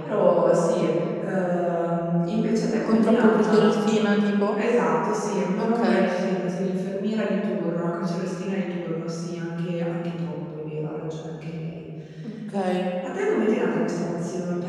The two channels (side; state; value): both; identical; correlation 1.00